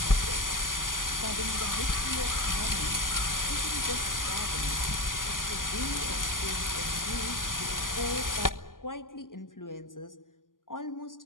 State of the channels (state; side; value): late; right; 0.89 ms